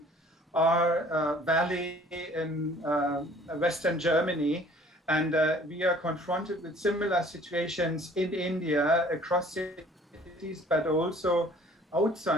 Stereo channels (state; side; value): normal; both; correlation 0.54